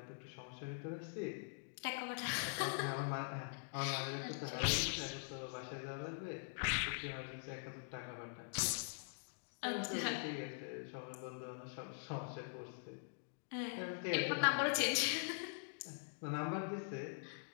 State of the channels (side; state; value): right; silent; digital silence